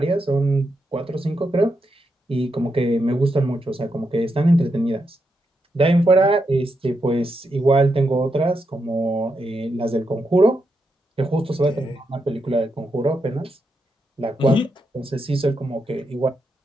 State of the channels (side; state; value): both; normal; correlation 0.83